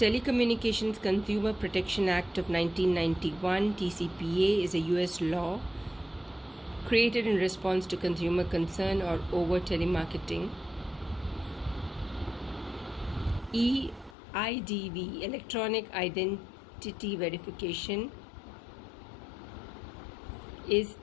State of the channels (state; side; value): drops out; right; at 14.2 s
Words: Consumer Protection Act of 1991, TCPA, is a US law created in response to consumer concern over telemarketing. EIDV, Electronic Identity Verification, is